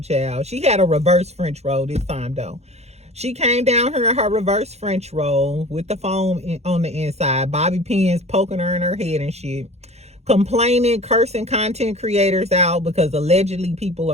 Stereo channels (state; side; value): late; left; 0.31 ms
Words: child. She had a reverse French roll this time, though. She came down here in her reverse French roll with the foam on the inside. Bobby pins poking her in her head and shit. Complaining, cursing content creators out because allegedly people